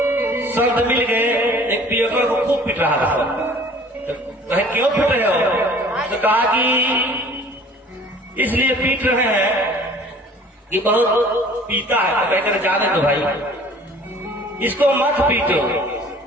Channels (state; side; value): normal; both; correlation 0.50